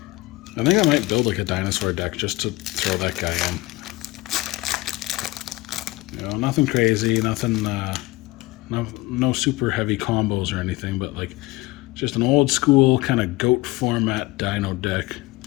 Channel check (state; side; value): quieter; right; 20.5 dB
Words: I think I might build like a dinosaur deck just to throw that guy in. You know, nothing crazy, nothing, no super heavy combos or anything, but like just an old school kind of goat format dino deck.